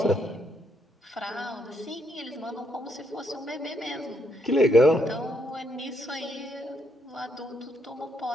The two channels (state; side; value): normal; both; correlation 0.75